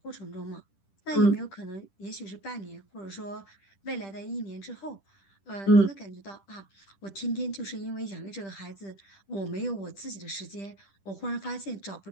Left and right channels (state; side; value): late; right; 10 ms